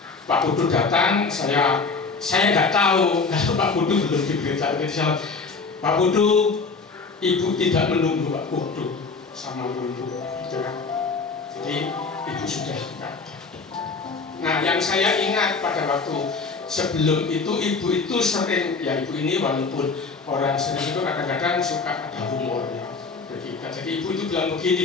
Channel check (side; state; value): right; quieter; 4.4 dB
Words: Pak Putu datang, saya nggak tahu kalau Pak Putu belum diberitahu. Pak Putu, Ibu tidak menunggu Pak Putu sama Lulu, gitu kan? Jadi Ibu sudah enggak. Nah, yang saya ingat pada waktu sebelum itu Ibu itu sering, ya Ibu ini walaupun orang sering itu kadang-kadang suka ada humornya. Jadi Ibu itu bilang